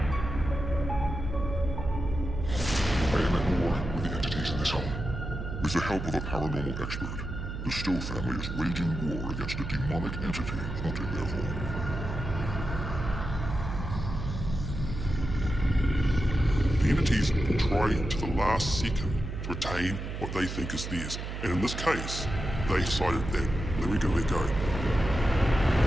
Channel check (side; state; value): right; noise; hum, 6 dB below the sound